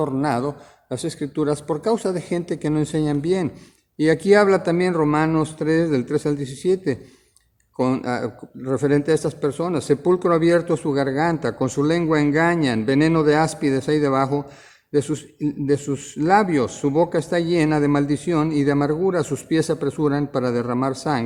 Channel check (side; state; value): both; identical; correlation 1.00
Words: las Escrituras por causa de gente que no enseñan bien. Y aquí habla también Romanos 3, del 3 al 17. Referente a estas personas, sepulcro abierto su garganta, con su lengua engañan, veneno de áspides hay debajo de sus labios, su boca está llena de maldición y de amargura, sus pies se apresuran para derramar